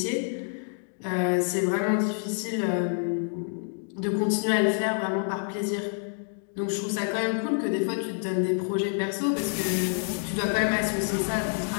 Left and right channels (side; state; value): right; silent; 60 dB below the other